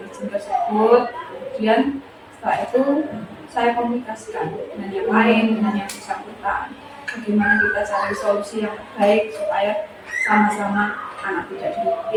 tersebut, kemudian setelah itu saya komunikasikan dengan yang lain, dengan yang bersangkutan, bagaimana kita cari solusi yang baik supaya sama-sama anak tidak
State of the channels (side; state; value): both; identical; correlation 1.00